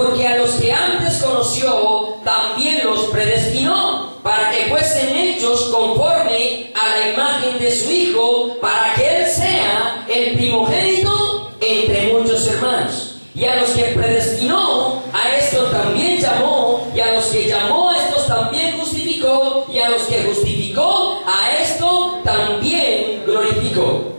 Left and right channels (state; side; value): inverted; both; correlation -1.00